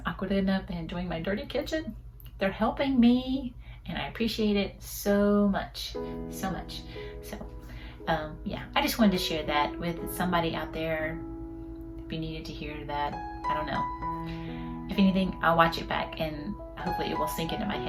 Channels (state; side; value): identical; both; correlation 1.00